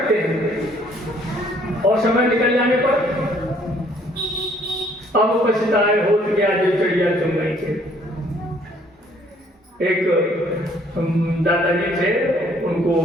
हैं, और समय निकल जाने पर अब पछताए हो गया जो चिड़िया चुन गई थे। एक दादाजी थे, उनको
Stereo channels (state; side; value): normal; both; correlation 0.62